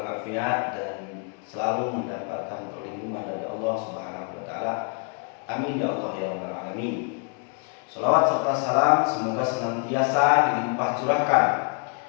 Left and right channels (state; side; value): quieter; right; 39.6 dB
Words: dan selalu mendapatkan perlindungan dari Allah Subhanahu wa taala. Amin ya Allah ya rabbal alamin. Salawat serta salam semoga senantiasa dilimpah curahkan